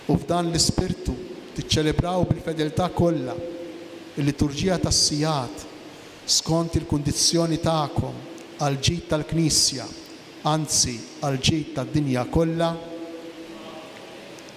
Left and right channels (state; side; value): identical; both; correlation 1.00